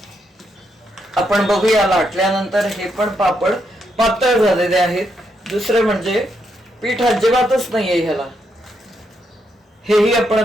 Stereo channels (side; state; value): both; normal; correlation 0.79